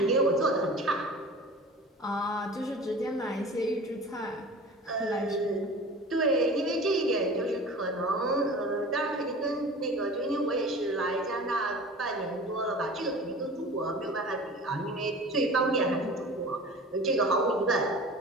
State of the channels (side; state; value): both; normal; correlation 0.39